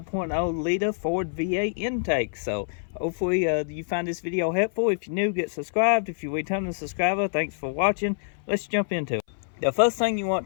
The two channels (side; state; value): right; silent; 57 dB below the other